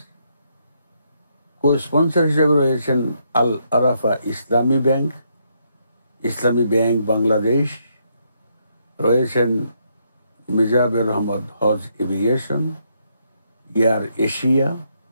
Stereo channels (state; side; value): inverted; both; correlation -0.76